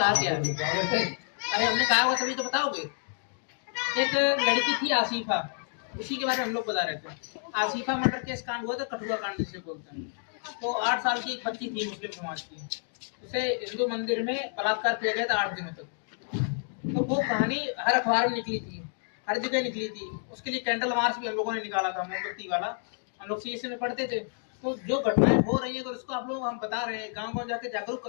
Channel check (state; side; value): silent; right; 57 dB below the other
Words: क्या। अरे हमने कहा होगा तभी तो बताओगे। एक लड़की थी आसिफा, उसी के बारे में हम लोग बता रहे थे। आसिफा मर्डर केस कांड हुआ था, कठुआ कांड जिसे बोलते हैं। तो 8 साल की एक बच्ची थी मुस्लिम समाज की, उसे हिंदू मंदिर में बलात्कार किया गया था 8 दिनों तक। तो वो कहानी हर अखबार में निकली थी, हर जगह निकली थी। उसके लिए कैंडल मार्च भी हम लोगों ने निकाला था, मोमबत्ती वाला। हम लोग CSE में पढ़ते थे। तो जो घटनाएं हो रही है अगर उसको आप लोग हम बता रहे हैं, गांव गांव जाके जागरूक